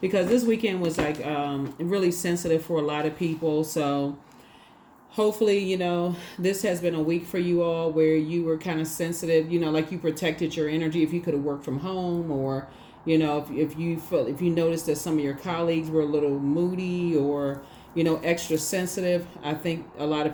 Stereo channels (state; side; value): identical; both; correlation 1.00